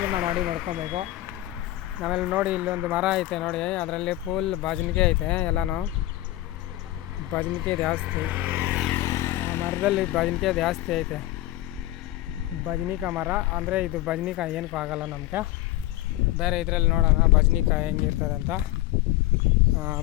ಮಾಡ್ಕೊಬೇಕು. ಆಮೇಲೆ ನೋಡಿ, ಇಲ್ಲೊಂದು ಮರ ಐತೆ ನೋಡಿ, ಅದರಲ್ಲಿ ಫುಲ್ ಬಜನಿಕೆ ಐತೆ. ಎಲ್ಲನೂ ಬಜನಿಕೆ ಜಾಸ್ತಿ, ಮರದಲ್ಲಿ ಬಜನಿಕೆ ಜಾಸ್ತಿ ಐತೆ. ಬಜನಿಕಾಯಿ ಮರ ಅಂದರೆ ಇದು ಬಜನಿಕಾಯಿ ಏನಕ್ಕೂ ಆಗೋಲ್ಲ ನಮಗೆ. ಬೇರೆ ಇದರಲ್ಲಿ ನೋಡೋಣ ಬಜನಿಕಾಯಿ ಹೆಂಗಿರ್ತದೆ ಅಂತ.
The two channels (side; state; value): right; quieter; 15.9 dB